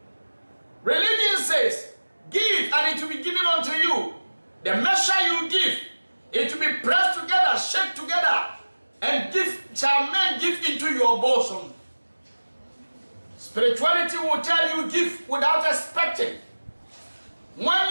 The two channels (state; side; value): inverted; both; correlation -1.00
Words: Religion says, give and it will be given unto you. The measure you give, it will be pressed together, shake together, and shall men give into your bosom. Spirituality will tell you give without expecting. When